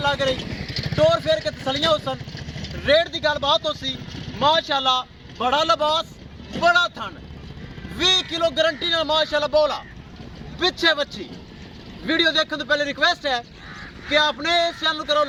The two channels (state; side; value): identical; both; correlation 1.00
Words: लग रही टोर फेर के तसलियां होसन। रेट की गलबात होसी माशाल्लाह, बड़ा लिबास बड़ा थन 20 किलो गारंटी नाल माशाल्लाह बोला पिछे बच्ची। वीडियो देखने तो पहले रिक्वेस्ट है कि अपने इस चैनल करो